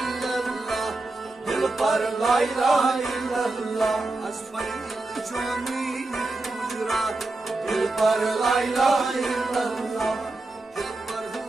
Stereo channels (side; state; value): left; quieter; 3.1 dB